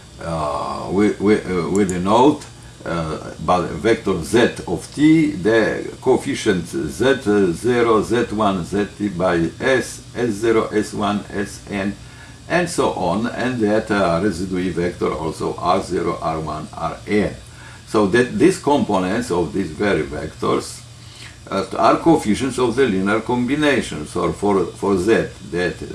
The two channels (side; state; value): both; identical; correlation 1.00